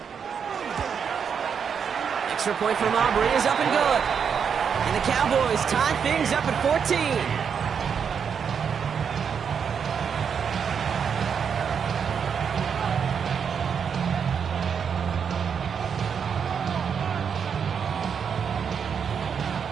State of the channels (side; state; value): left; quieter; 6.9 dB